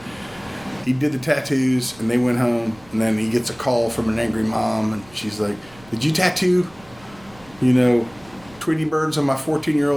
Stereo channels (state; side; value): noise; right; rumble, 25 dB below the sound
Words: he did the tattoos, and they went home, and then he gets a call from an angry mom, and she's like, "Did you tattoo, Tweety birds on my